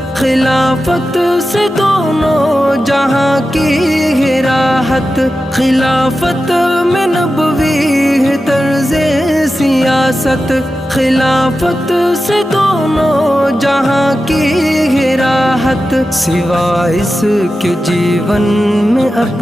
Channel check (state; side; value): normal; both; correlation 0.92